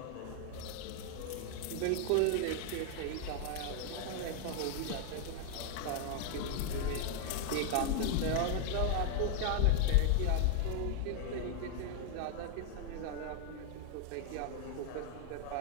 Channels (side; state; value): both; different; correlation 0.00